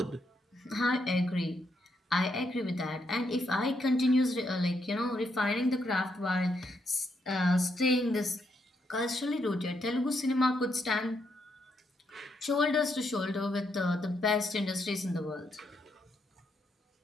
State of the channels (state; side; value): normal; both; correlation 0.78